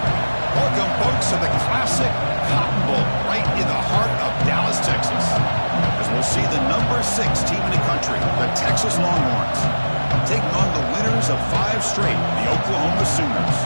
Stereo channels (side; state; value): both; inverted; correlation -1.00